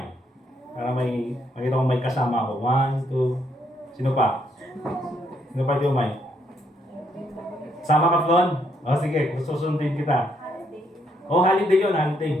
Para makita ko may kasama ako. 1, 2. Sino pa? Sino pa yung may? Sama ka, Flon? O sige, susundin kita. O, holiday yun,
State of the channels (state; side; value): normal; both; correlation 0.73